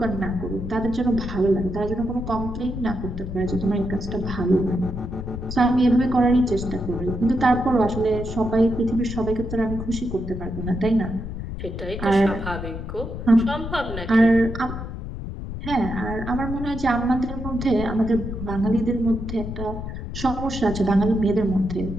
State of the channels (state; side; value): noise; left; rumble, 7 dB below the sound